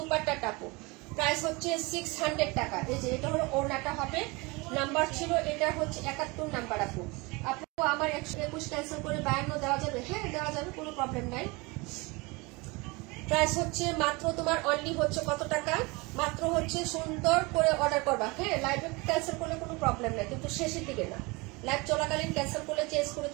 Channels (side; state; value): left; quieter; 25.8 dB